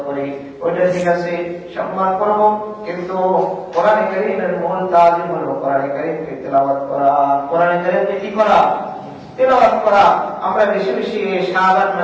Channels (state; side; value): identical; both; correlation 1.00